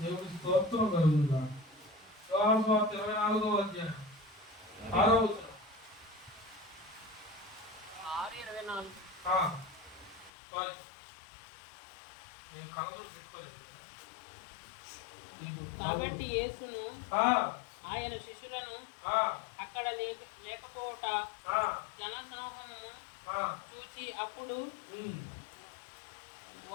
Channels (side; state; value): right; drops out; at 10.3 s